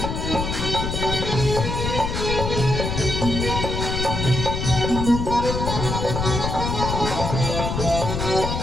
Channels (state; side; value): noise; left; rumble, 2 dB below the sound